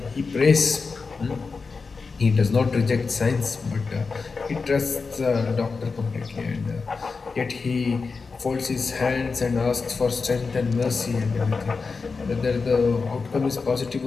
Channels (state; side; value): quieter; right; 4.6 dB